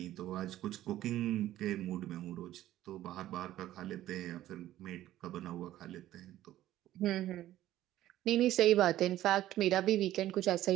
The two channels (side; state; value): left; quieter; 13.8 dB